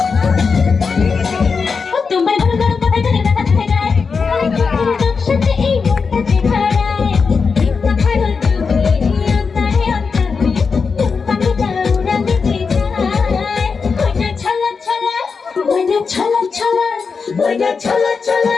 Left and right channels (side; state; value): right; quieter; 5.2 dB